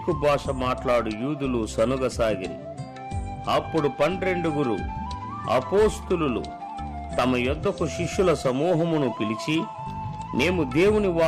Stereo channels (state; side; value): identical; both; correlation 1.00